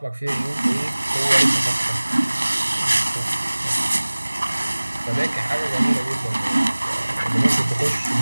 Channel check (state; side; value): inverted; both; correlation -1.00